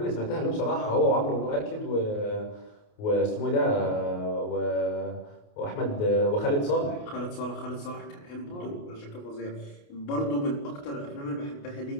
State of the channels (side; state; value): right; late; 28 ms